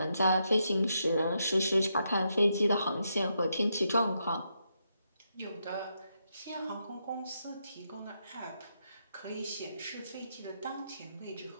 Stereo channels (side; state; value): both; inverted; correlation -0.81